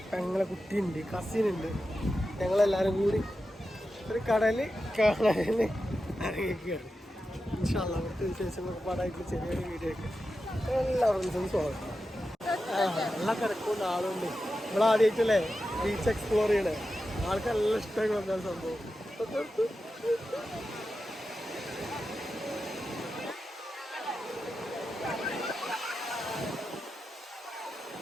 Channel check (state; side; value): normal; both; correlation 0.91